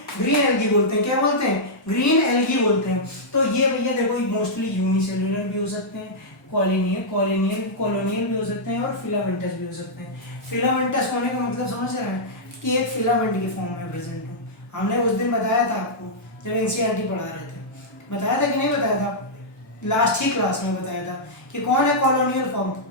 ग्रीन एल्गी बोलते हैं। क्या बोलते हैं? ग्रीन एल्गी बोलते हैं। तो ये भैया देखो मोस्टली यूनिसेल्युलर भी हो सकते हैं, कॉलोनियल भी हो सकते हैं और फिलामेंटस भी हो सकते हैं। फिलामेंटस होने का मतलब समझ रहे हैं कि एक फिलामेंट के फॉर्म में प्रेजेंट हो। हमने उस दिन बताया था आपको जब एनसीईआरटी पढ़ा रहे थे, बताया था कि नहीं बताया था? लास्ट ही क्लास में बताया था कि कौन है कॉलोनियल फॉर्म?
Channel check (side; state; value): right; late; 1.8 ms